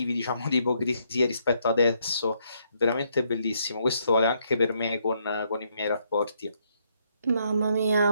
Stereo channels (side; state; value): both; inverted; correlation -0.73